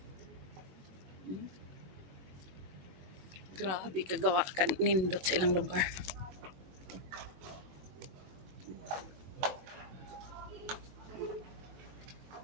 Grabe, kagawa ka nindot sa ilang lugar.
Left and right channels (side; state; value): left; late; 22 ms